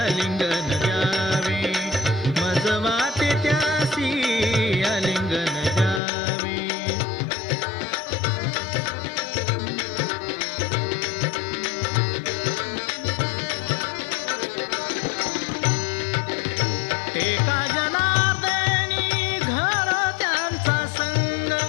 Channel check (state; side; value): drops out; right; at 6.0 s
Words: द्यावे, मज वाटे त्यासी अलिंगन द्यावे. एका जनार्दनी घर त्यांचा संग,